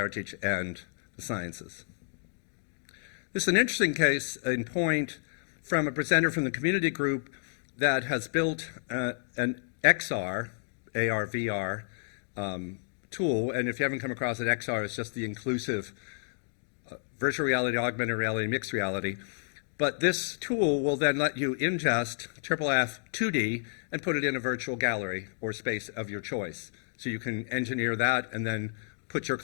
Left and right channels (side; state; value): right; silent; digital silence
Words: and the sciences. This is an interesting case in point from a presenter from the community group that has built an XR, AR/VR tool, and if you haven't come across it, XR is just the inclusive virtual reality, augmented reality, mixed reality. But this tool will then let you ingest IIIF 2D and put it in a virtual gallery or space of your choice. So you can engineer that and then put your